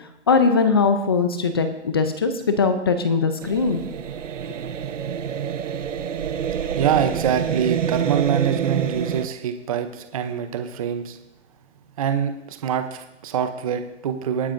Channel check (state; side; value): normal; both; correlation -0.16